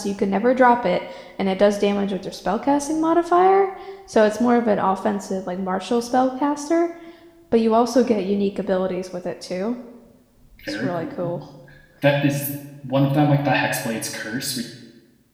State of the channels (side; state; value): both; identical; correlation 1.00